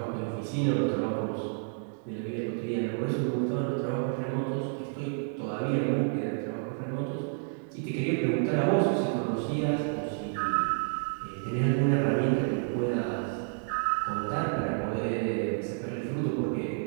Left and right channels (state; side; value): silent; left; 58 dB below the other